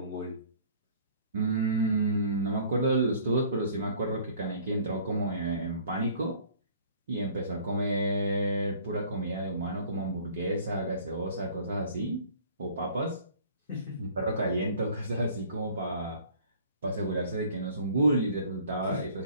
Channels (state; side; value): inverted; both; correlation -0.52